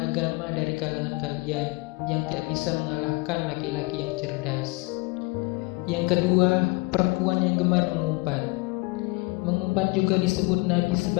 dari kalangan kalian yang tidak bisa mengalahkan laki-laki yang cerdas." Yang kedua, perempuan yang gemar mengumpat. Dapat juga disebut nabi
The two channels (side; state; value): right; quieter; 25.8 dB